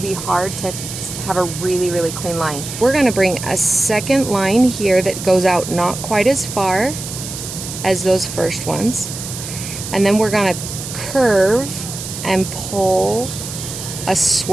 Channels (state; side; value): noise; right; hiss, 8 dB below the sound